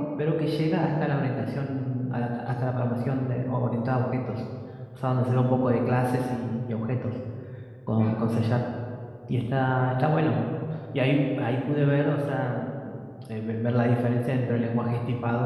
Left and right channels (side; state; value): both; identical; correlation 1.00